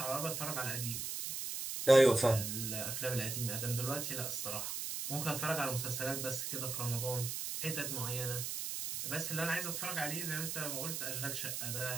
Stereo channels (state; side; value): noise; right; hiss, 3 dB below the sound